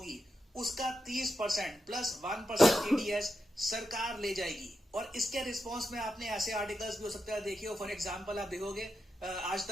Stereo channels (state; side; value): normal; both; correlation 0.87